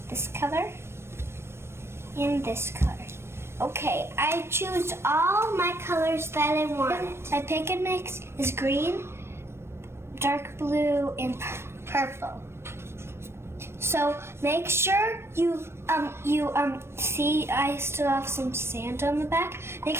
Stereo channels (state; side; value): late; left; 0.12 ms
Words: this color and this color. Okay, I choose all my colors that I want. My pick and mix is green, dark blue, and purple. So make sure you see I still have some sand on the back. Make